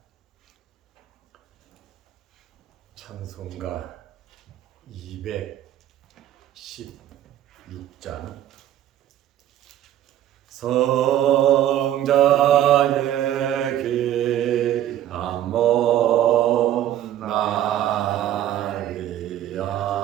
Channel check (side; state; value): left; quieter; 11.9 dB